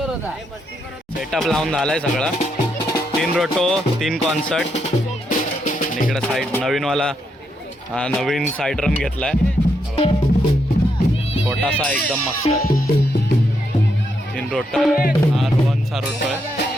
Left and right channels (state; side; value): normal; both; correlation 0.79